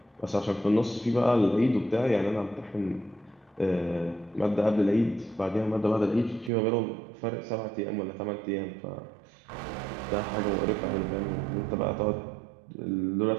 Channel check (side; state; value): left; drops out; at 6.5 s